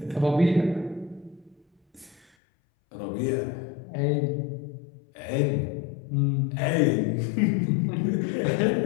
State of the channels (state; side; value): drops out; right; at 2.2 s